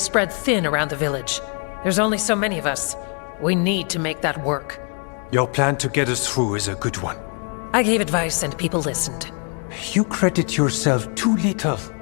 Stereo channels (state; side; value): quieter; right; 39.2 dB